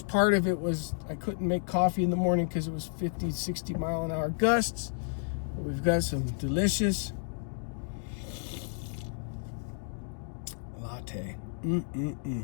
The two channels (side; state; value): right; silent; digital silence